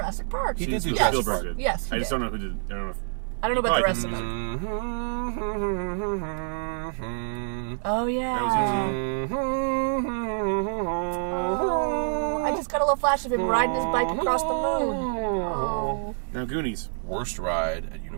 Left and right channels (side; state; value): left; silent; 56 dB below the other